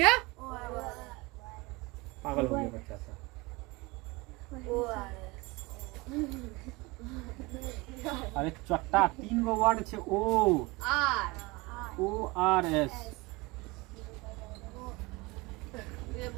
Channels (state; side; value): quieter; left; 24.1 dB